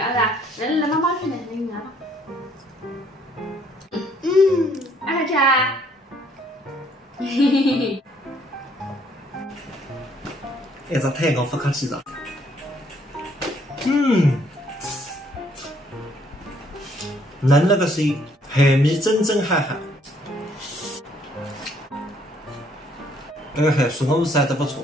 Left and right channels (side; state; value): both; normal; correlation 0.65